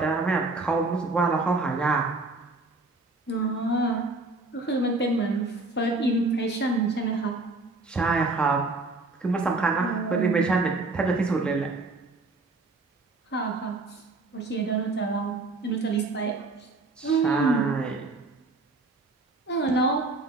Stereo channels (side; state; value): left; quieter; 3.4 dB